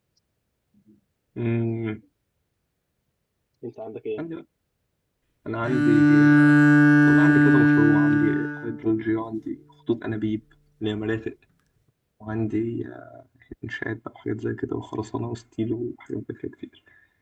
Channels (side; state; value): both; identical; correlation 1.00